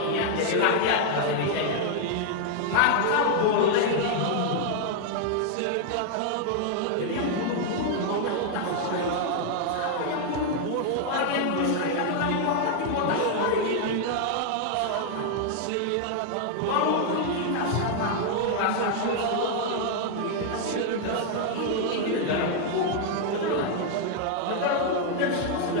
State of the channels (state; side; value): different; both; correlation 0.00